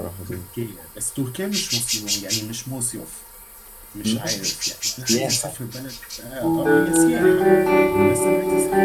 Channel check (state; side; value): identical; both; correlation 1.00